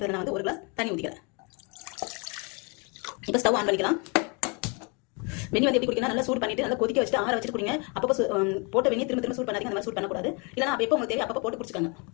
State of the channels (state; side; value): quieter; right; 32.5 dB